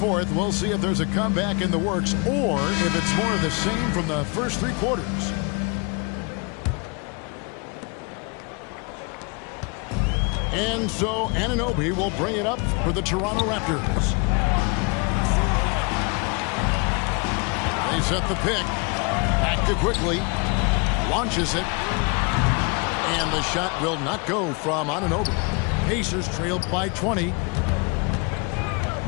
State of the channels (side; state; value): right; quieter; 32.2 dB